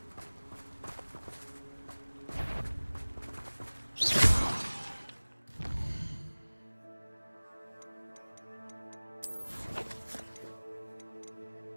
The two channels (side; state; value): both; inverted; correlation -1.00